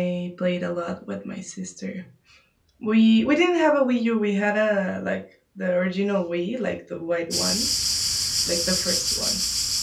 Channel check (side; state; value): both; identical; correlation 1.00